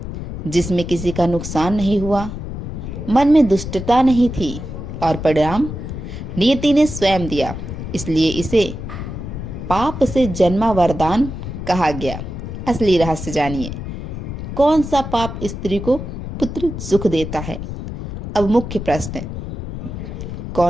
जिसमें किसी का नुकसान नहीं हुआ, मन में दुष्टता नहीं थी और परिणाम नियति ने स्वयं दिया। इसलिए इसे पाप से जन्मा वरदान कहा गया। असली रहस्य जानिए, कौन सा पाप स्त्री को पुत्र सुख देता है? अब मुख्य प्रश्न,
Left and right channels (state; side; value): noise; left; rumble, 7 dB below the sound